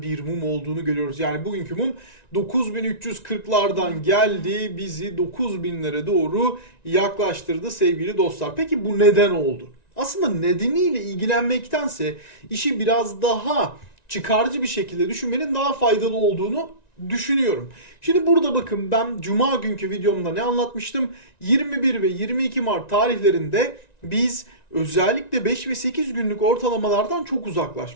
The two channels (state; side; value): late; right; 1.9 ms